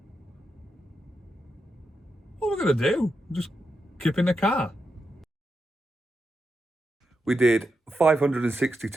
What are we going to do? Just keep in the car. We did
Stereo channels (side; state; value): both; normal; correlation 0.86